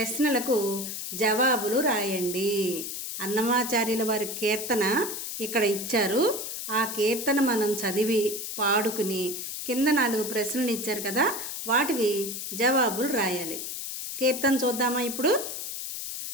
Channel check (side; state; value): left; noise; hiss, 6 dB below the sound